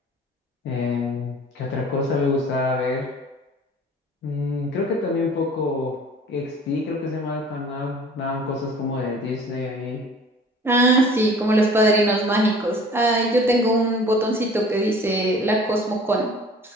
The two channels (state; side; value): normal; both; correlation 0.48